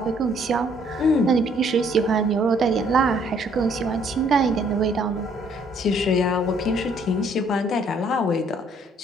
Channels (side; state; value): both; normal; correlation 0.64